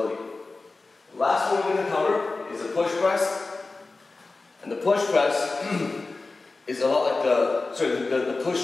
The last one we're going to cover is the push press. And the push press is a lot like the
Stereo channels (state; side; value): quieter; right; 3.6 dB